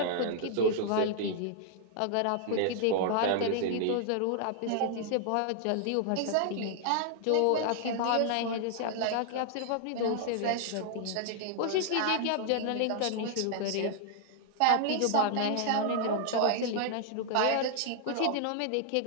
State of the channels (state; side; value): different; both; correlation -0.01